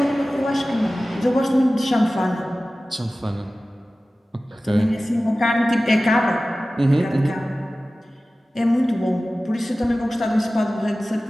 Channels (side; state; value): both; normal; correlation 0.96